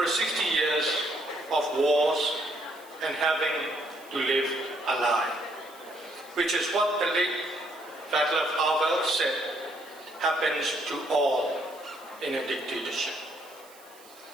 60 years of wars and having to live a lie, which is what the late Václav Havel said happens to all in a dictatorship.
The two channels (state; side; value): noise; right; hiss, 24 dB below the sound